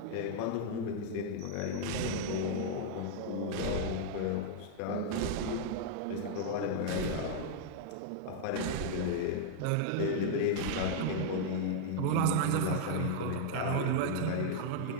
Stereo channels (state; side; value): different; both; correlation -0.01